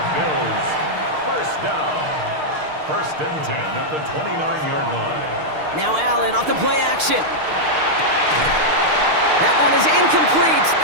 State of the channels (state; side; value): late; left; 6.5 ms